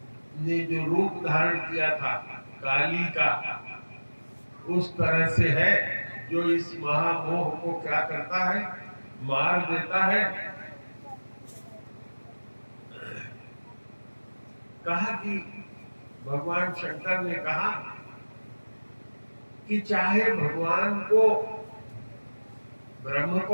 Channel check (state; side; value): inverted; both; correlation -1.00